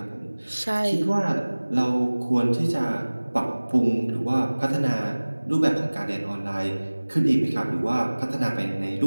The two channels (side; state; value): both; inverted; correlation -1.00